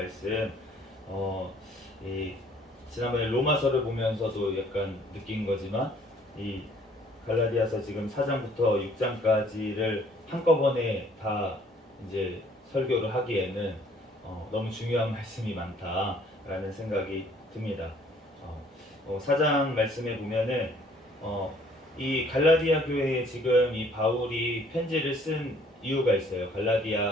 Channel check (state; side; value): normal; both; correlation 0.59